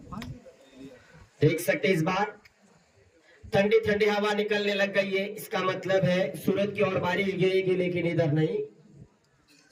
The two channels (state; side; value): identical; both; correlation 1.00